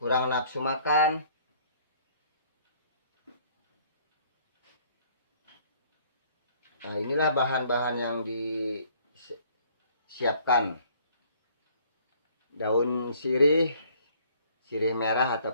nafsu makan. Nah, inilah bahan-bahan yang disiapkan. Daun sirih merah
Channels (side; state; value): both; inverted; correlation -0.59